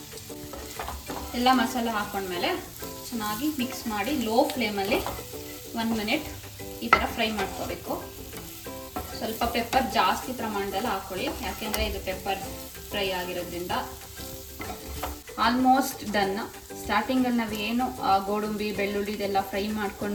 ಎಲ್ಲ ಮಸಾಲೆ ಹಾಕೊಂಡ್ಮೇಲೆ ಚೆನ್ನಾಗಿ ಮಿಕ್ಸ್ ಮಾಡಿ ಲೋ ಫ್ಲೇಮಲ್ಲಿ 1 ಮಿನಿಟ್ ಈ ಥರ ಫ್ರೈ ಮಾಡ್ಕೋಬೇಕು. ಸ್ವಲ್ಪ ಪೆಪ್ಪರ್ ಜಾಸ್ತಿ ಪ್ರಮಾಣದಲ್ಲಿ ಹಾಕ್ಕೊಳ್ಳಿ, ಯಾಕೆಂದರೆ ಇದು ಪೆಪ್ಪರ್ ಫ್ರೈ ಆಗಿರೋದ್ರಿಂದ. Almost done. ಸ್ಟಾರ್ಟಿಂಗಲ್ಲಿ ನಾವೇನು ಗೋಡಂಬಿ, ಬೆಳ್ಳುಳ್ಳಿ ಇದೆಲ್ಲ ಫ್ರೈ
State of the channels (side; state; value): both; identical; correlation 1.00